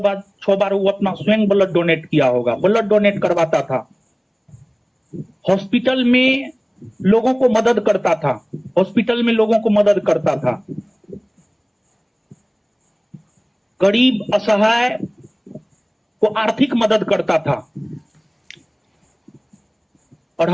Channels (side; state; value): both; identical; correlation 1.00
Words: बार वो अपना स्वयं ब्लड डोनेट किया होगा, ब्लड डोनेट करवाता था। हॉस्पिटल में लोगों को मदद करता था, हॉस्पिटल में लोगों को मदद करता था। गरीब असहाय को आर्थिक मदद करता था। और